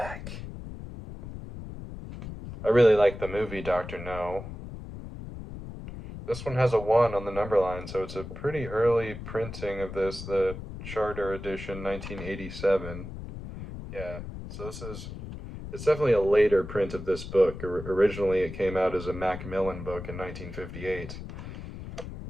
I really like the movie Dr. No. This one has a 1 on the number line, so it's a pretty early printing of this, the Charter Edition 1987. Yeah, so it's definitely a later print of this book. Originally it came out as a Macmillan book in 1958.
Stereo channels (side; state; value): left; noise; rumble, 10 dB below the sound